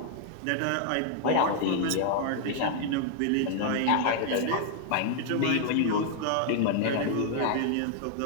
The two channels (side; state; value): both; different; correlation 0.00